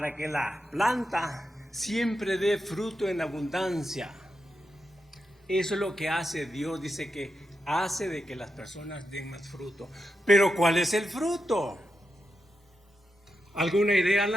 que la planta siempre dé fruto en abundancia. Eso es lo que hace Dios, dice que hace de que las personas den más fruto. Pero ¿cuál es el fruto? ¿Alguna idea,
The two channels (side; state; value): both; normal; correlation 0.87